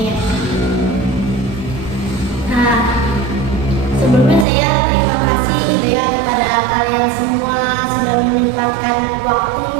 Nah, sebelumnya saya terima kasih gitu ya kepada kalian semua sudah menyempatkan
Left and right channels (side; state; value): left; drops out; at 4.5 s